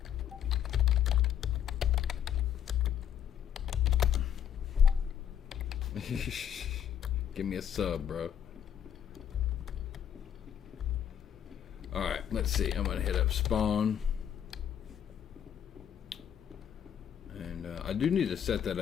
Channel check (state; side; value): quieter; right; 9.2 dB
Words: Give me a sub, bro. Alright, let's see. I'm gonna hit up spawn. And I do need to set that